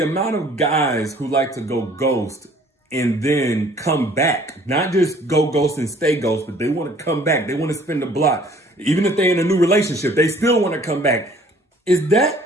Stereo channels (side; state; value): both; normal; correlation 0.55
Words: of guys who like to go ghost and then come back, not just go ghost and stay ghost, but they want to come back. They want to spin the block. Even if they're in a new relationship, they still want to come back. Is